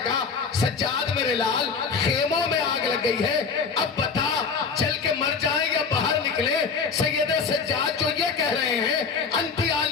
کہا سجاد میرے لال خیموں میں آگ لگ گئی ہے، اب بتا جل کے مر جائیں یا باہر نکلے؟ سید سجاد جو یہ کہہ رہے ہیں انتی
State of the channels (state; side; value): quieter; right; 5.4 dB